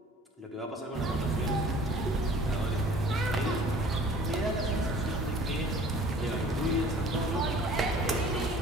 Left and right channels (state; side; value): normal; both; correlation 0.50